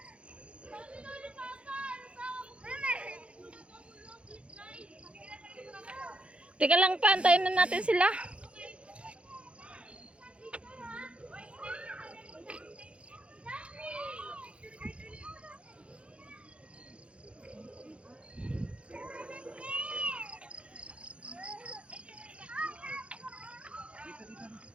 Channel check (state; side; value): late; left; 0.060 ms